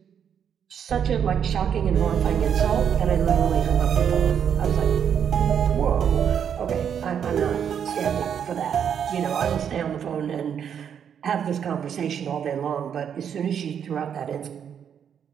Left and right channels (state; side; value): quieter; left; 8.2 dB